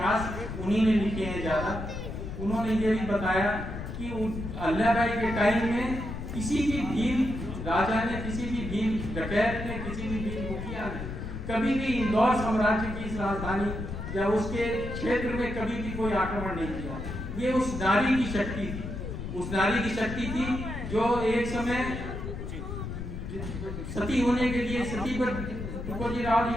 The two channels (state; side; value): noise; left; rumble, 7 dB below the sound